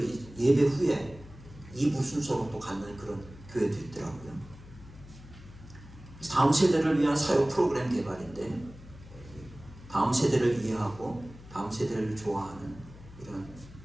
예배 후에 2부 순서로 또 갖는 그런 교회도 있더라고요. 그래서 다음 세대를 위한 사역 프로그램 개발인데, 다음 세대를 이해하고 다음 세대를 좋아하는 이런,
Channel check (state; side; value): noise; left; hum, 18 dB below the sound